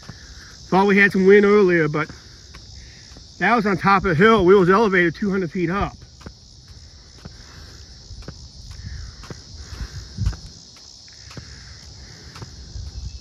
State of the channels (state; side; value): identical; both; correlation 1.00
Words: Thought we had some wind earlier, but that was on top of a hill. We was elevated 200 feet up.